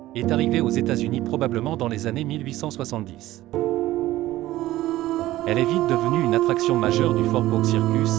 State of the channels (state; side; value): quieter; left; 15.8 dB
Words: est arrivée aux États-Unis probablement dans les années 1870. Elle est vite devenue une attraction majeure du Fort Bourke